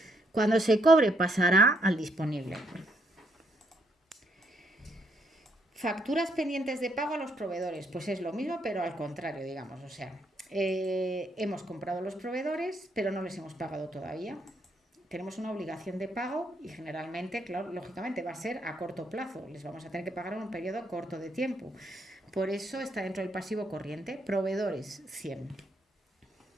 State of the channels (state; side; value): normal; both; correlation 0.73